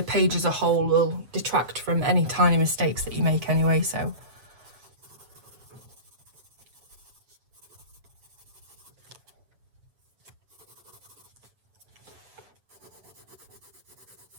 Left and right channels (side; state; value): left; late; 8.0 ms